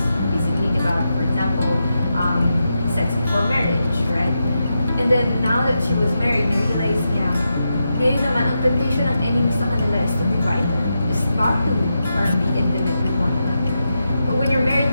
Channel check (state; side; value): inverted; both; correlation -0.87